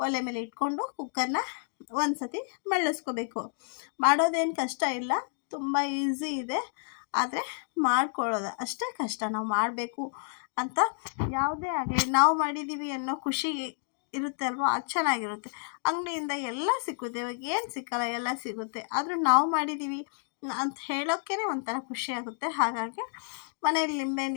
ಒಲೆ ಮೇಲೆ ಇಟ್ಕೊಂಡು ಕುಕ್ಕರ್ನ ಒಂದು ಸತಿ ಮಳ್ಳಿಸ್ಕೋಬೇಕು. ಮಾಡೋದೇನು ಕಷ್ಟ ಇಲ್ಲ, ತುಂಬ ಈಸಿ ಇದೆ. ಆದರೆ ಮಾಡ್ಕೊಳ್ಳೋದು ಅಷ್ಟೇ ಕಷ್ಟ. ನಾವು ಮಾಡಬೇಕು ಅಂತ ಯಾವುದೇ ಆಗಲಿ ನಾವು ಮಾಡಿದ್ದೀವಿ ಅನ್ನೋ ಖುಷಿ ಇರುತ್ತೆ ಅಲ್ವ, ಅದು ಚೆನ್ನಾಗಿರುತ್ತೆ. ಅಂಗಡಿಯಿಂದ ಎಲ್ಲ ಸಿಗುತ್ತೆ, ಇವಾಗ ಏನು ಸಿಕ್ಕಲ್ಲ ಎಲ್ಲ ಸಿಗುತ್ತೆ. ಆದರೂ ನಾವು ಮಾಡಿದ್ದೀವಿ ಅಂತ ಹೇಳೋಕ್ಕೇ ಒಂಥರ ಖುಷಿಯಾಗುತ್ತೆ. ಹಾಗಾಗಿ ಮನೇಲಿ ಲಿಂಬೆಹಣ್ಣು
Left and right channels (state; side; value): silent; right; 58 dB below the other